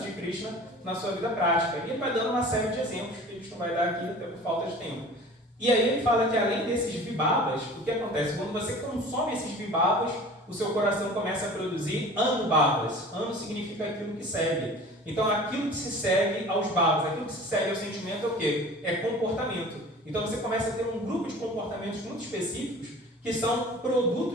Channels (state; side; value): normal; both; correlation 0.42